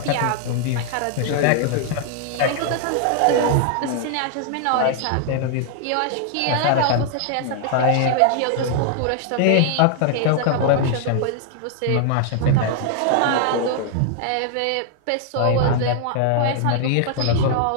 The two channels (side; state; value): both; different; correlation 0.00